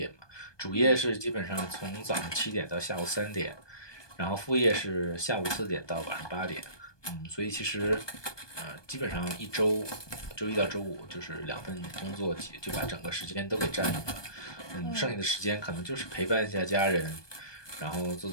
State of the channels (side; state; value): right; late; 1.2 ms